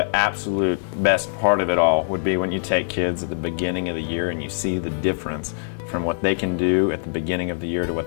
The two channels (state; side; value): silent; right; digital silence